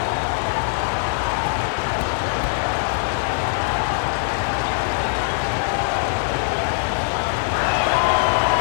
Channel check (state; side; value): silent; right; 56 dB below the other